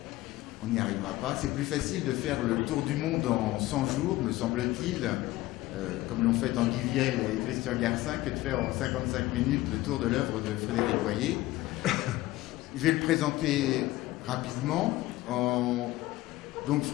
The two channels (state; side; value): quieter; right; 17.5 dB